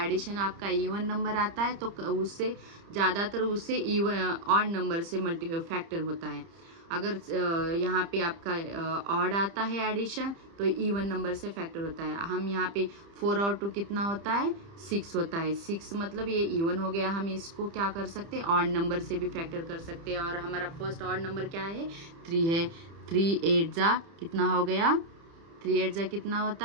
आपका इवन नंबर आता है तो उससे ज़्यादातर उससे इवन ऑड नंबर से फैक्टर होता है। अगर यहाँ पे आपका ऑड आता है एडिशन तो इवन नंबर से फैक्टर होता है। हम यहाँ पे 4 और 2 कितना होता है, 6 होता है। 6 मतलब ये इवन हो गया। हम इसको क्या कर सकते हैं, ऑड नंबर से भी फैक्टर कर सकते हैं। और हमारा फर्स्ट ऑड नंबर क्या है, 3 है। 3 8 जा कितना हो गया, 3 8 जा कितना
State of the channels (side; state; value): left; late; 30 ms